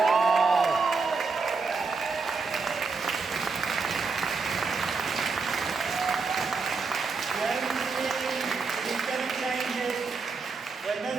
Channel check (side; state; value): left; quieter; 4.5 dB